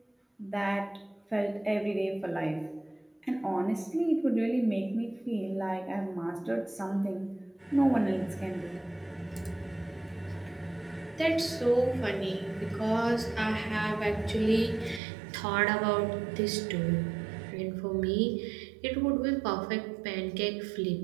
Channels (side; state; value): left; drops out; at 15.0 s